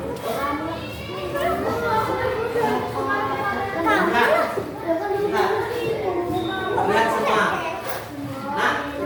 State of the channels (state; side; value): identical; both; correlation 1.00